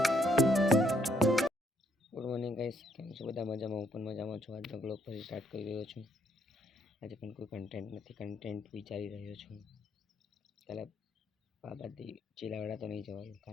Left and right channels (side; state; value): both; normal; correlation 0.71